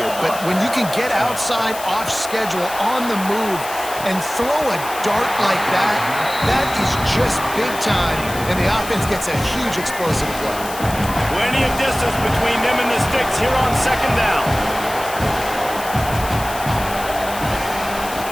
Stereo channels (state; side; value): noise; left; hiss, 12 dB below the sound